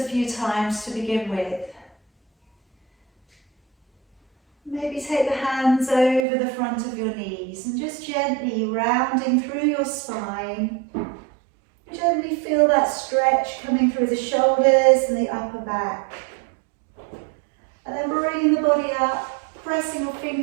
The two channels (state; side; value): drops out; left; at 6.2 s